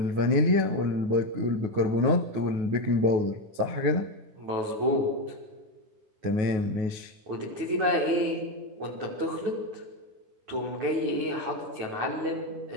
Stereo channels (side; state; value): left; late; 9.2 ms